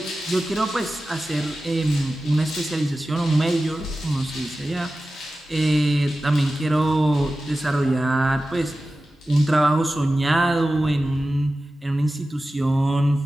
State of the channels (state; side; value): normal; both; correlation 0.94